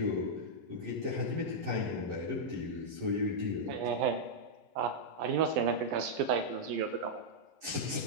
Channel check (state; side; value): late; left; 11 ms